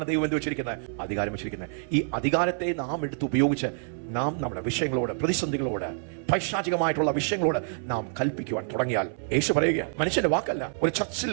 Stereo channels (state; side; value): silent; left; 57 dB below the other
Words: ദൈവം എന്ത് വെച്ചിരിക്കുന്നത്? അധികാരം വെച്ചിരിക്കുന്നത്. ഈ അധികാരത്തെ നാം എടുത്ത് ഉപയോഗിച്ച് നാം നമ്മുടെ വിഷയങ്ങളോട്, പ്രതിസന്ധികളോട്, പൈശാചികമായിട്ടുള്ള വിഷയങ്ങളോട് നാം കൽപ്പിക്കുവാൻ തുടങ്ങിയാൽ, യേശു പറയുക, മനുഷ്യന്റെ വാക്കല്ല, ഒരു ചർച്ചിൽ